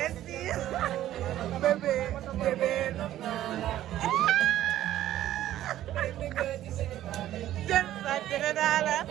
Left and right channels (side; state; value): left; quieter; 13.1 dB